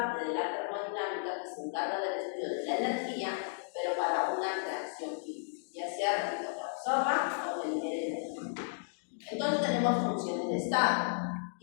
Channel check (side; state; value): right; silent; digital silence